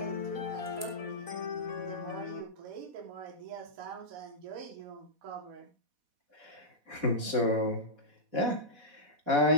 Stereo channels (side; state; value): left; late; 4.1 ms